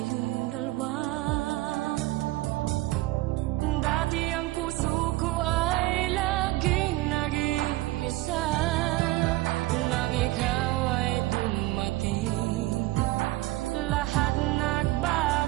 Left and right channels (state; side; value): quieter; left; 18.2 dB